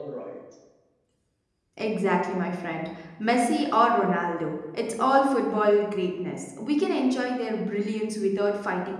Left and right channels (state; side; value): identical; both; correlation 1.00